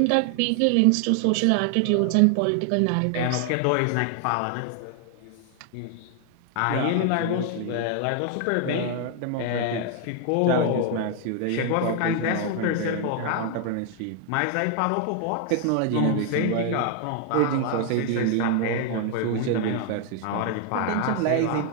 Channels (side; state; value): both; different; correlation 0.00